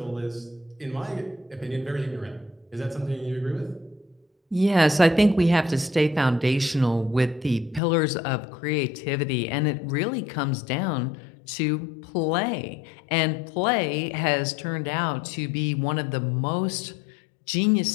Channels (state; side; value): drops out; right; at 7.8 s